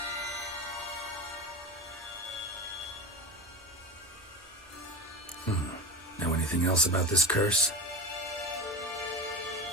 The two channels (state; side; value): normal; both; correlation 0.25